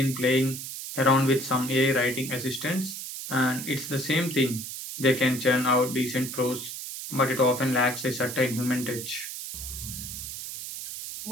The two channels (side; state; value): right; noise; hiss, 8 dB below the sound